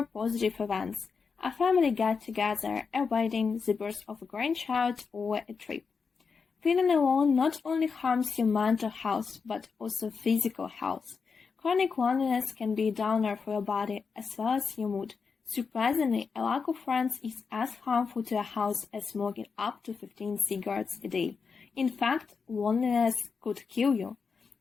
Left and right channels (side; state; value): right; quieter; 5.3 dB